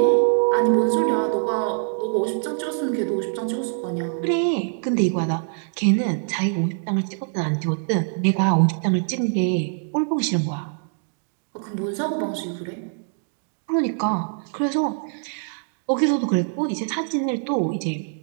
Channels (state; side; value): silent; left; 63 dB below the other